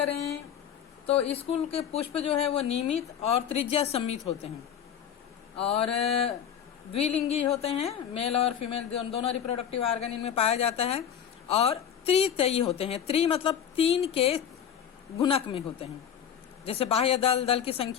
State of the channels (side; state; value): right; quieter; 8.8 dB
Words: तो स्कूल के पुष्प जो है वो नियमित और त्रिज्या सम्मित होते हैं और द्विलिंगी होते हैं। मेल और फीमेल दोनों रिप्रोडक्टिव ऑर्गन इनमें पाया जाता है और त्रितयी होते हैं। त्रि मतलब 3 के गुणक में होते हैं, जैसे बाह्य दल की